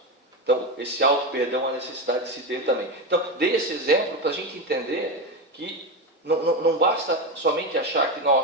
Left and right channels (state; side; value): normal; both; correlation 0.15